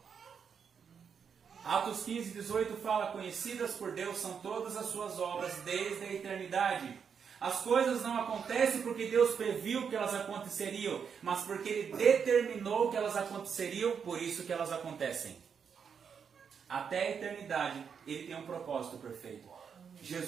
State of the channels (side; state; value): left; quieter; 6.8 dB